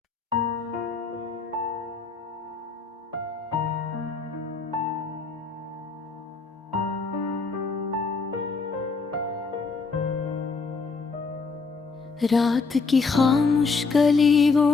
रात की खामोश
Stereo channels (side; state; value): right; quieter; 4.5 dB